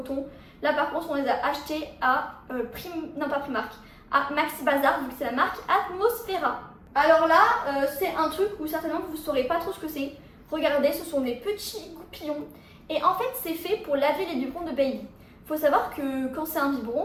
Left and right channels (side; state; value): both; identical; correlation 1.00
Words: Là par contre, on les a achetés à Primark, à Maxi Bazar, vu que c'est la marque Atmosphera. Alors là, c'est un truc où certainement vous ne saurez pas trop ce que c'est. Regardez, ce sont des petits goupillons. Et en fait, c'est fait pour laver les biberons de baby. Il faut savoir que quand c'est un biberon,